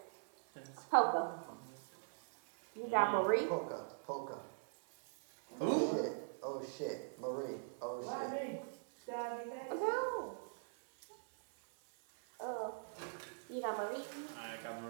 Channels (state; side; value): silent; left; 50 dB below the other